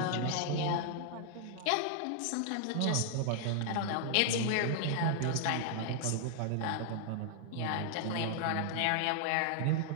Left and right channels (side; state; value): both; different; correlation 0.00